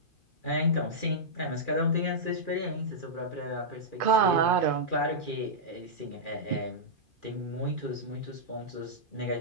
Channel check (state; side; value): late; right; 2.4 ms